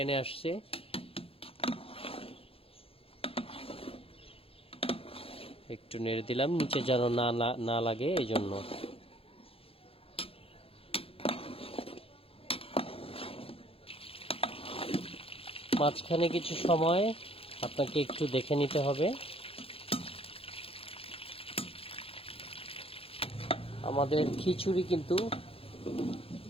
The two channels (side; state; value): right; late; 0.27 ms